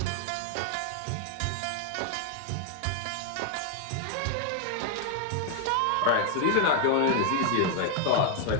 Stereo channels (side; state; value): both; different; correlation 0.00